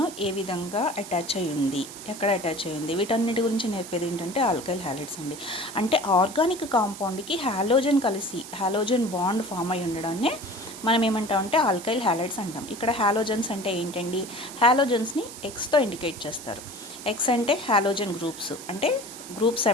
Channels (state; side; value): noise; right; hiss, 14 dB below the sound